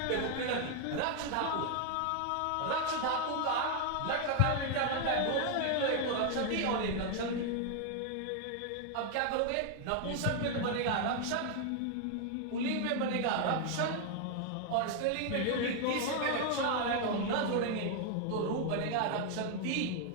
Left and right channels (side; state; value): both; different; correlation 0.00